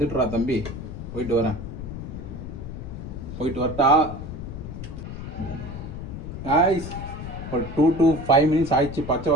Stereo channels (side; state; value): left; noise; rumble, 8 dB below the sound